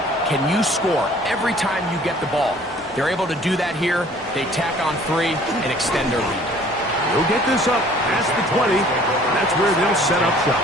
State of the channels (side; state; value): both; normal; correlation 0.54